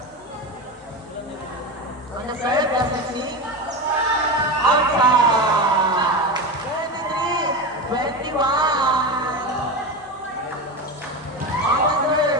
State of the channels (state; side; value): noise; left; hum, 30 dB below the sound